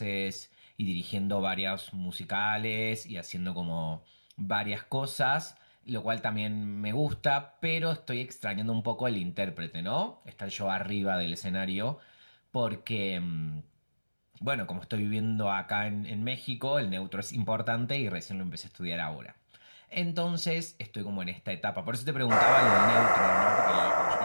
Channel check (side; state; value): both; inverted; correlation -1.00